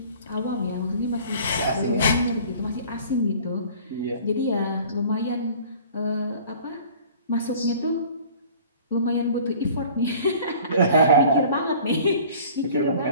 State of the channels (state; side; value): inverted; both; correlation -0.48